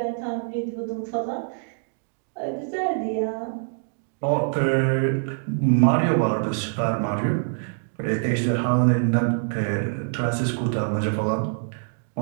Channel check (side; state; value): left; silent; digital silence